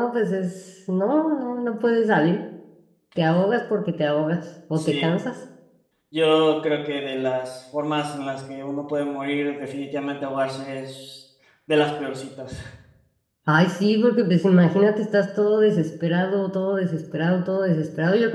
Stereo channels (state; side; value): identical; both; correlation 1.00